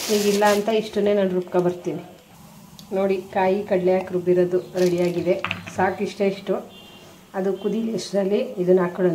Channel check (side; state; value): both; identical; correlation 1.00